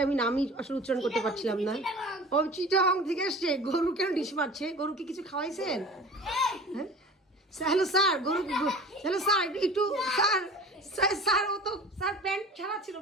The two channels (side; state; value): both; normal; correlation 0.41